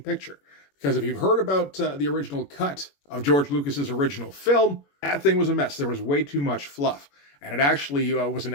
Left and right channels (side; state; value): right; late; 21 ms